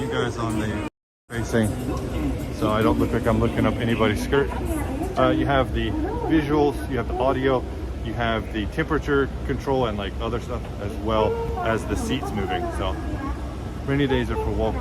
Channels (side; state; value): both; identical; correlation 1.00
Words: guys on the facing so I don't look like I'm looking up anybody's skirt. You have the visuals, you have the audio, you have the temperature control and like other stuff, as well as the seats moving. So rainy days are for